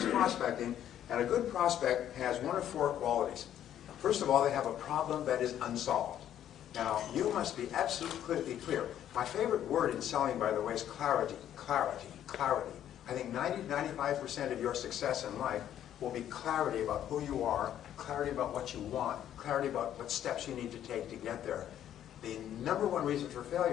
prospecting, and a good prospect has 1 of 4 qualities. First of all, they have a problem that is unsolved. Now, you must be absolutely clear. My favorite word in selling, by the way, is clarity. Clarity. Clarity. I think 90-95% of your success in life will be clarity about who you are, clarity about what you want, clarity about what steps you need to take to get there. The number 1 reason for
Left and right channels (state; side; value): quieter; right; 10.9 dB